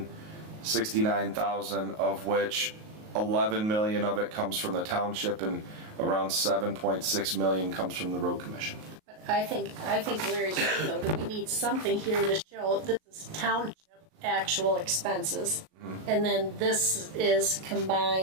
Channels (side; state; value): left; late; 38 ms